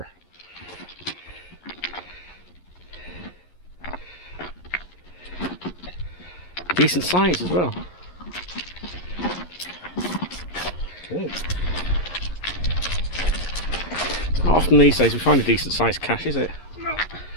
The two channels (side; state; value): right; late; 11 ms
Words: Decent size as well. Good. Not often these days we find a decent sized cache, is it?